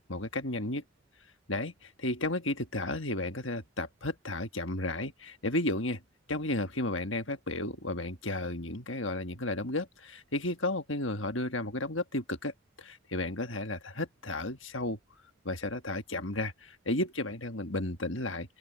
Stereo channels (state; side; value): normal; both; correlation 0.11